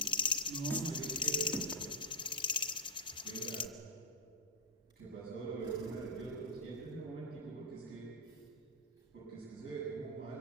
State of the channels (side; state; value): both; normal; correlation -0.06